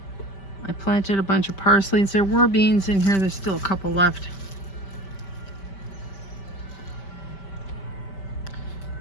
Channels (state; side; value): late; right; 5.2 ms